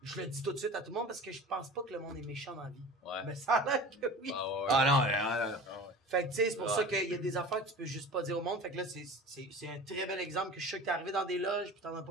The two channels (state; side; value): normal; both; correlation 0.38